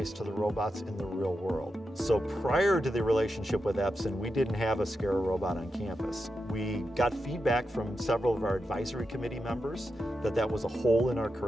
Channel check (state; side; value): normal; both; correlation 0.88